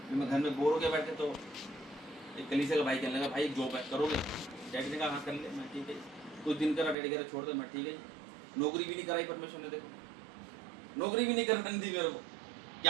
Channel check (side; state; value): left; drops out; at 7.0 s